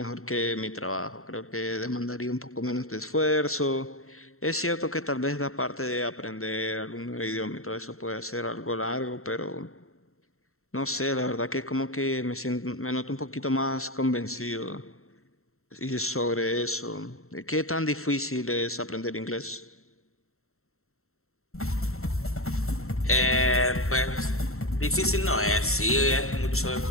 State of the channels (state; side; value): late; right; 0.63 ms